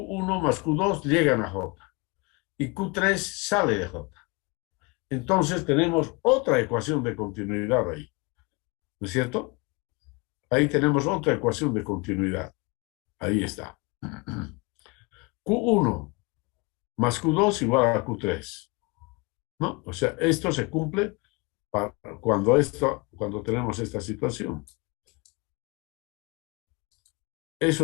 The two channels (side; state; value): right; quieter; 27.4 dB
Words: más Q2 llegan a J. Y Q3 sale de J. Entonces tenemos otra ecuación de continuidad ahí. ¿No es cierto? Ahí tenemos otra ecuación de continuidad. Ahí está. Q1 más Q2 igual a Q3. ¿No? O sea, esto se cumple cuando tenemos esta situación.